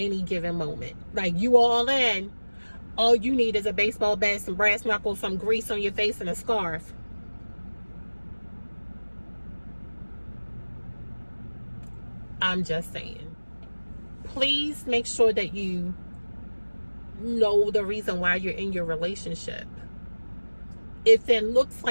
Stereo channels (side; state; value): both; inverted; correlation -1.00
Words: given moment. Like, you all in. All you need is a baseball bat, some brass knuckles, some grease on your face, and a scarf. I'm just saying. Please make sure that you know the reason why you're in your relationship. If it looks